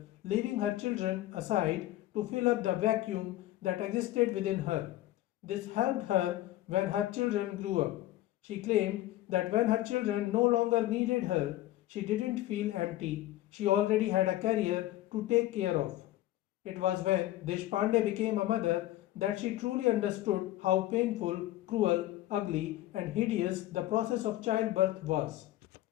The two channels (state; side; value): quieter; right; 15.3 dB